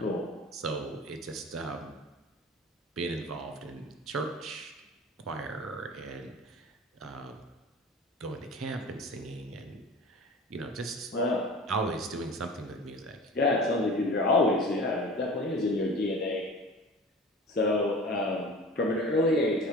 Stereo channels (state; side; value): normal; both; correlation 0.39